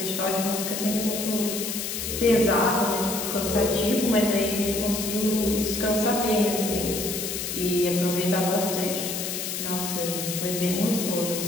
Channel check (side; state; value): left; noise; hiss, 4 dB below the sound